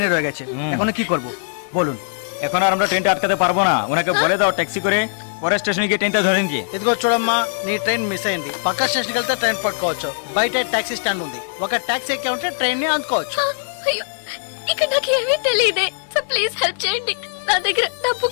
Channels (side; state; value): right; silent; digital silence